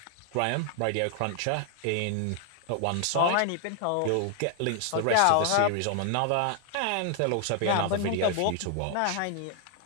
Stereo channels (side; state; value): both; different; correlation 0.00